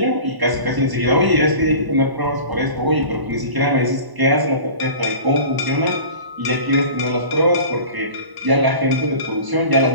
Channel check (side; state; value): left; late; 1.0 ms